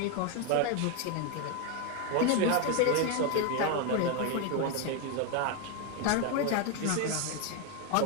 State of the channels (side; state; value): both; different; correlation 0.02